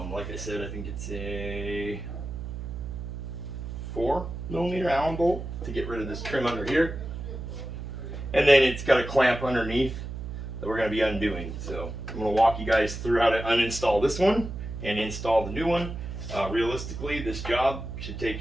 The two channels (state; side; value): noise; right; hum, 7 dB below the sound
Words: I said, I think it's a 4mm Allen bolt to get rid of this trim under here. And then it's got a clamp underneath that we're going to be undoing. So I'm going to walk you guys through how to uninstall this one and install the new one. Realistically, this job should take